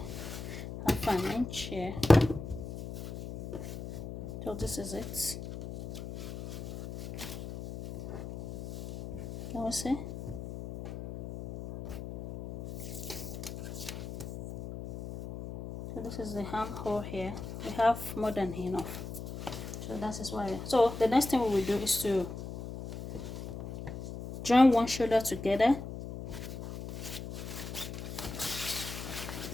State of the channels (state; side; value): noise; left; hum, 9 dB below the sound